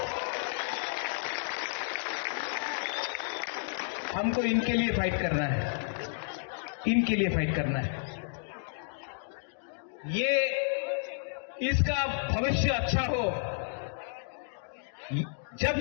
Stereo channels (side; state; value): right; silent; digital silence